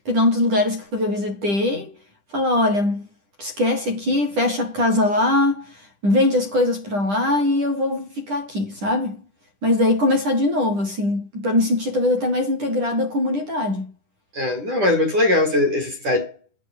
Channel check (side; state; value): left; late; 10 ms